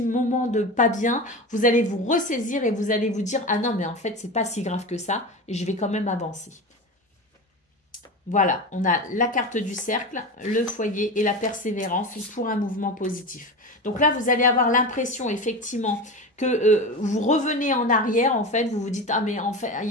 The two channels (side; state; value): both; normal; correlation 0.25